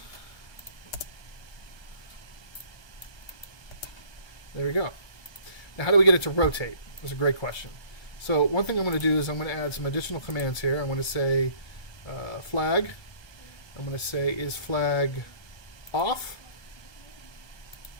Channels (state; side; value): late; right; 1.2 ms